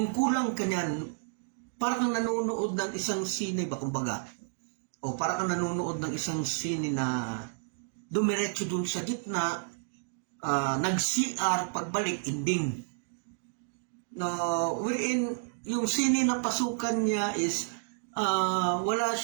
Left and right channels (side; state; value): left; silent; digital silence